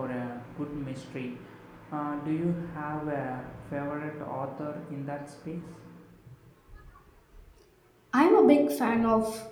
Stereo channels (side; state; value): both; identical; correlation 1.00